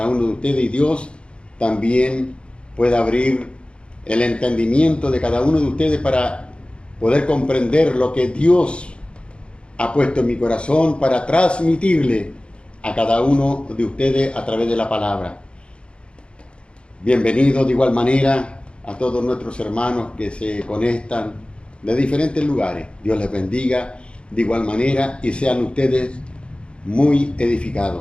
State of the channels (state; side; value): late; right; 0.057 ms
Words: uno de ustedes y Dios también pueda abrir el entendimiento de cada uno de ustedes para poder comprender lo que Dios ha puesto en mi corazón para transmitirle a cada uno de ustedes a través de la palabra. Bienvenidos de igual manera a todos nuestros hermanos que se conectan de diferentes lugares. Dios les bendiga de igual manera y sean ustedes muy